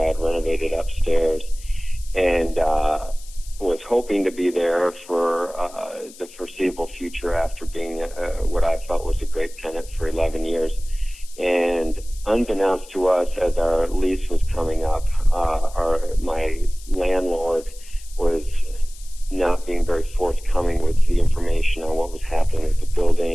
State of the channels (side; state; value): left; noise; hiss, 20 dB below the sound